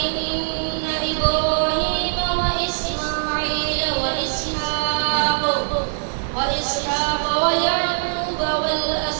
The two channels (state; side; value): silent; left; digital silence